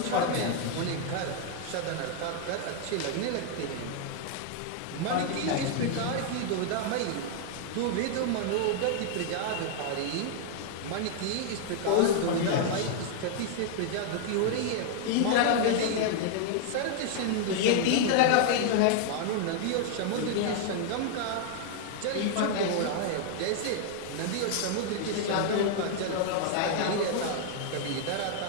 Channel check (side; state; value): both; different; correlation 0.00